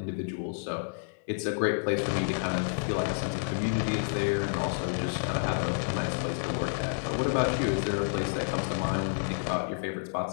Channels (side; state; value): right; silent; digital silence